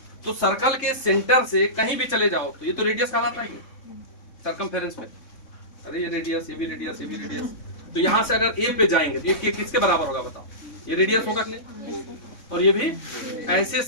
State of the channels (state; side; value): late; right; 3.6 ms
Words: तो सर्कल के सेंटर से कहीं भी चले जाओ तो ये तो रेडियस कहलाता है सर्कमफेरेंस में, अरे ये रेडियस, ये भी रेडियस, ये भी रेडियस, तो यहां से अगर ए पे जाएंगे तो ये किसके बराबर होगा बताओ, ये रेडियस होगा कि नहीं, और ये भी ऐसे